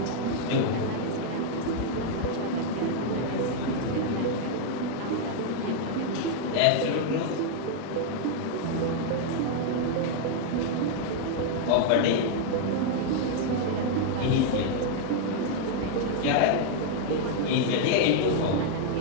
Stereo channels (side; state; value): both; different; correlation 0.00